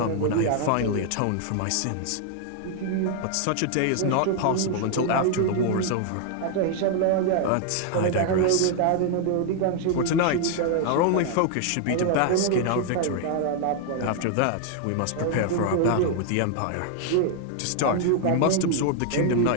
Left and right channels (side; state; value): both; different; correlation 0.00